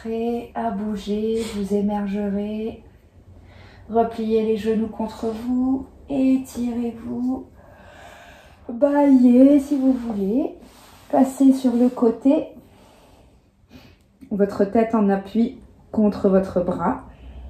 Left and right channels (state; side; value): identical; both; correlation 1.00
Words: à bouger, vous émergerez, repliez les genoux contre vous, étirez-vous, baillez si vous voulez, passez sur le côté, votre tête en appui contre votre bras.